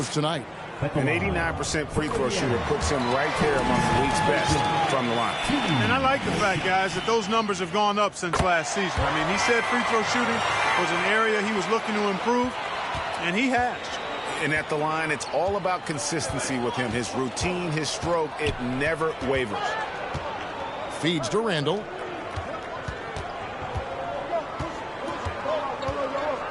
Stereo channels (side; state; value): both; identical; correlation 1.00